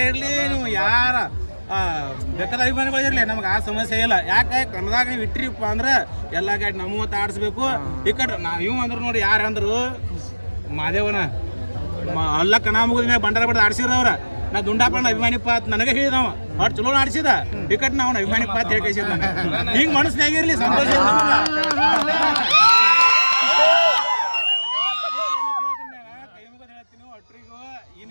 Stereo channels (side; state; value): both; inverted; correlation -1.00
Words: ಇರಲಿ, ನೀವು ಯಾರ ಬೇಕಾದ ಅಭಿಮಾನಿಗಳು ಇರಲಿ, ನಮ್ಗೆ ಆ ಸಮಸ್ಯೆ ಇಲ್ಲ. ಯಾಕೆ ಕನ್ನದಾಗ ನೀವು ಇಟ್ಟಿರಿಪ್ಪ ಅಂದ್ರೆ ಎಲ್ಲ ಗಾಡಿ ನಮ್ಮತ್ತ ಆಡಿಸ್ಬೇಕು. ಈ ಕಡೆ ನಾವು ಅಂದ್ರು ನೋಡಿ ಯಾರು ಅಂದ್ರು ಮಾದೇವನ ಎಲ್ಲ ಕಣ ಮುಗಿದ ಮ್ಯಾಗ ಭಂಡಾರ ಬಡ್ದು ಆಡ್ಸಿರವ್ರ. ನಾ ದುಂಡಾಪಣ್ಣ ಅಭಿಮಾನಿ ಪಾತ್ ನನಗೆ ಹೇಳಿದವ ಅವ್ರು ಚಲೋ ಆಡಿಸಿದ. ಈ ಕಡೆ ನಾವು ಅಭಿಮಾನಿ ಪಾತ್ ಹೇಳ್ಕೈಸಿದ. ಹಿಂಗೆ ಮನಸ್ಸಿನಾಗಿರ್ಲಿ ಸಂತೋಷ.